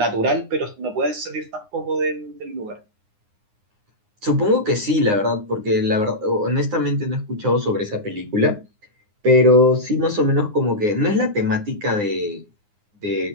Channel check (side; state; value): left; late; 9.7 ms